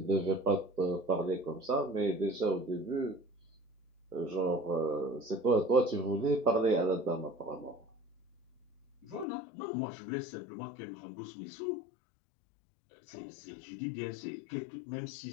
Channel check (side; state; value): right; drops out; at 9.2 s